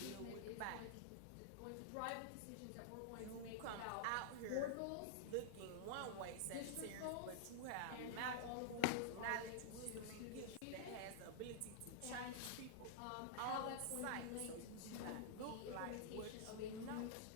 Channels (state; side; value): different; both; correlation -0.01